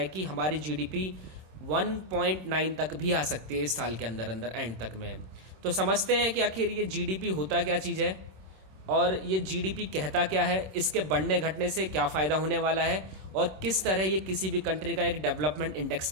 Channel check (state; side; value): late; left; 26 ms